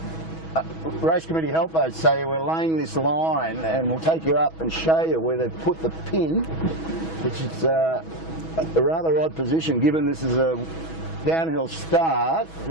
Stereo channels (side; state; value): right; late; 6.2 ms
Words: race committee help boats say we're laying this line, and we'll take you up and show you where they've put the pin, which is a rather odd position given this is a downhill start.